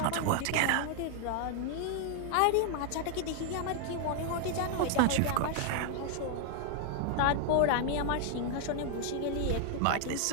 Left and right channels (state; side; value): different; both; correlation 0.00